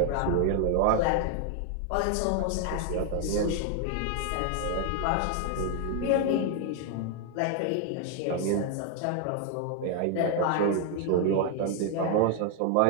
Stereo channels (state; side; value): different; both; correlation 0.00